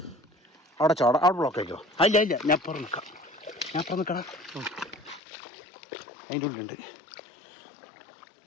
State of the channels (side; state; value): right; drops out; at 5.2 s